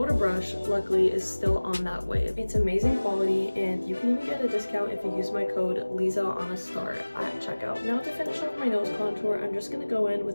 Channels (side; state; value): both; inverted; correlation -1.00